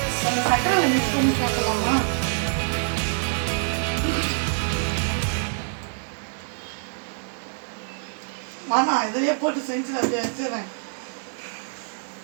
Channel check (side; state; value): left; silent; digital silence